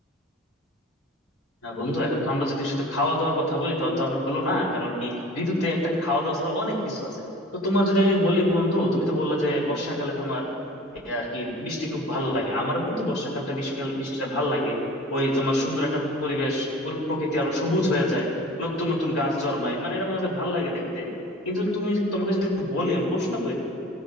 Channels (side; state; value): both; normal; correlation 0.43